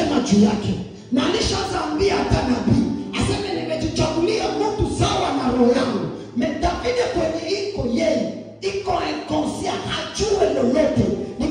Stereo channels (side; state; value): both; identical; correlation 1.00